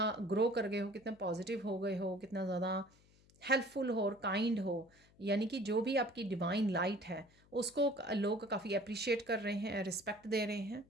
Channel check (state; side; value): noise; left; hum, 29 dB below the sound